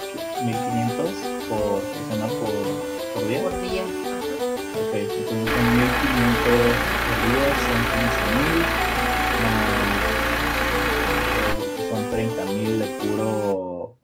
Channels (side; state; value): both; identical; correlation 1.00